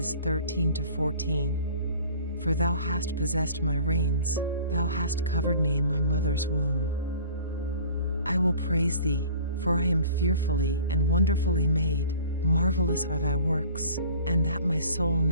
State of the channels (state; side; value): inverted; both; correlation -0.47